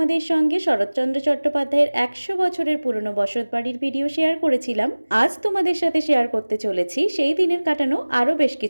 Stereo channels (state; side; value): inverted; both; correlation -1.00